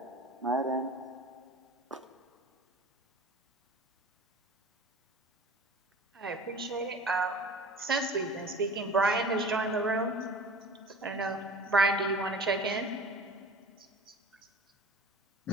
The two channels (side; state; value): both; normal; correlation 0.41